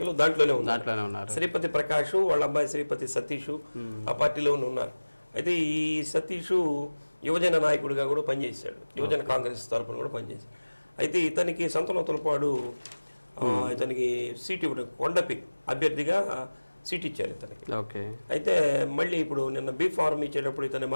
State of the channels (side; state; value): both; inverted; correlation -1.00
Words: దాంట్లోనే ఉన్నారు. శ్రీపతి ప్రకాష్ వాళ్ళ అబ్బాయి శ్రీపతి సతీష్ ఆ పార్టీలోనే ఉన్నారు. అయితే ఈ సతీష్ యువజన నాయకుడిగా కూడా పనిచేశాడు, యువజన కాంగ్రెస్ తరఫున కూడా పనిచేశాడు. అయితే ఇతనికి సంతనోతులపాడు ఇతనికి సీట్ ఇవ్వడం, కొండపి అభ్యర్థిగా సీట్ ఇచ్చారు ఇతనికి. అయితే మళ్ళీ ఇప్పుడు నిన్న బీ ఫార్మ్ ఇచ్చేటప్పుడు ఇతన్ని